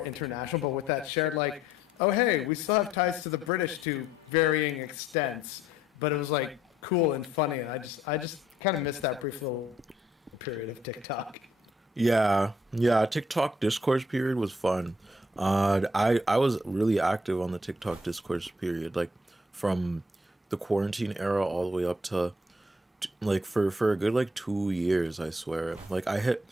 international, but with that shared like, oh hey, we still have ties to the British to varying extents, but it was like cool and funny, and I just kind of missed that brief little period of TikTok. Yeah, TikTok discourse period was fun. I was really active on the TikTok discourse period, like from the quarantine era all the way up to like for a good like 2 years, I swear. Like I hit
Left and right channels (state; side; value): normal; both; correlation 0.66